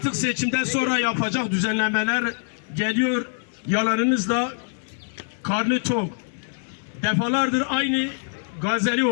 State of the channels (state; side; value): silent; right; digital silence